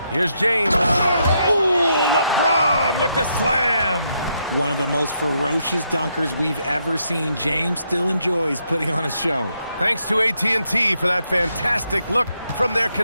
Here's James. Ooh, LeBron with the slam. One of the most ferocious dunkers we've ever seen. James still enjoys putting on a show. Thanks to AT&T for that fantastic look from their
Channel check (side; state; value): both; inverted; correlation -0.78